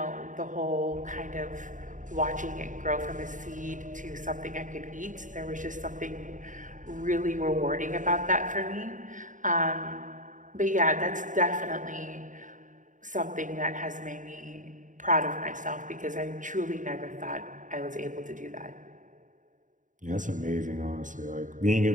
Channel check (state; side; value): late; left; 0.37 ms